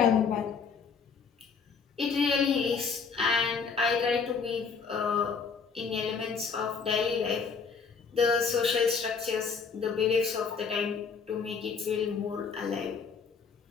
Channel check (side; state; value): right; quieter; 5.6 dB